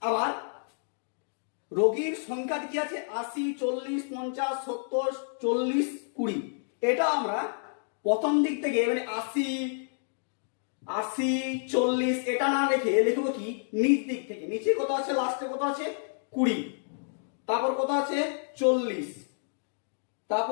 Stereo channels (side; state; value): right; silent; digital silence